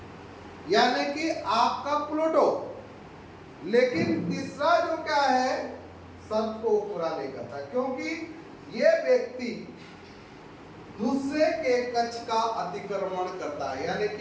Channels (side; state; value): both; identical; correlation 1.00